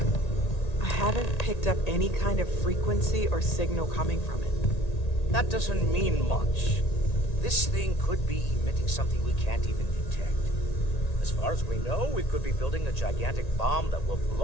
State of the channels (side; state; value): right; late; 1.8 ms